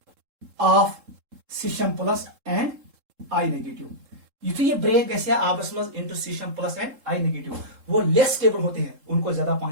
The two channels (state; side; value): late; left; 3.7 ms